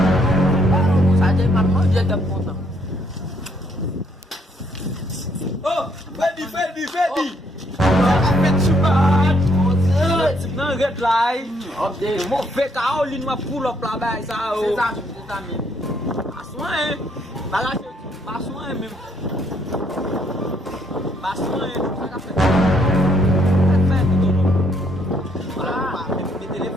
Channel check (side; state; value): both; normal; correlation 0.70